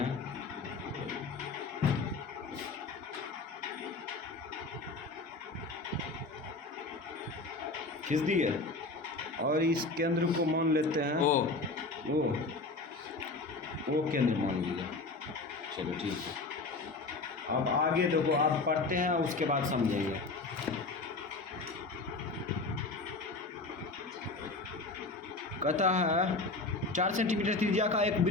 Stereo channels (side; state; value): right; quieter; 3.5 dB